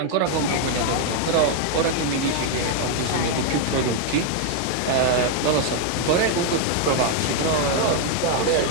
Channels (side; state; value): both; different; correlation 0.00